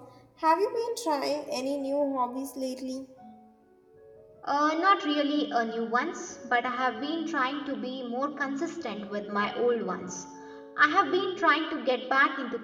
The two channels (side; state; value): both; identical; correlation 1.00